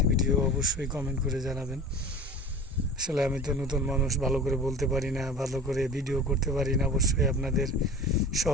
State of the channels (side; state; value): both; normal; correlation 0.37